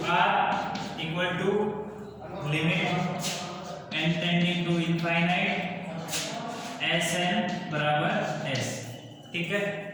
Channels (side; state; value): both; identical; correlation 1.00